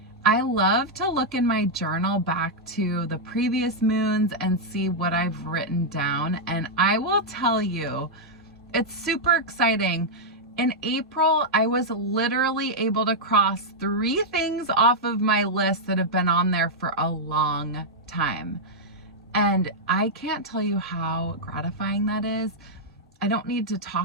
I love to look in my journal back to the previous moons and see what I've written down. And I will tell you, it's super exciting. In April, I was literally able to cross 3 things off of my list that have been on there for a long time. And I can't tell you how gratifying that is. I don't need to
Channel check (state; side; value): normal; both; correlation -0.04